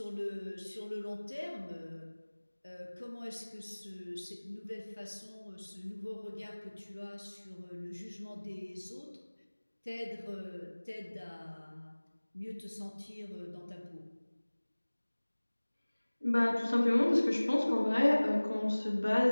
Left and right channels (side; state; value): both; inverted; correlation -1.00